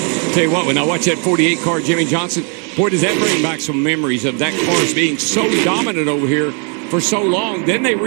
Tell you what, when I watch that 48 car, Jimmy Johnson, boy, does that bring back some memories of that car being so dominant over here for so long. Then they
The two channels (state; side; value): quieter; left; 38.5 dB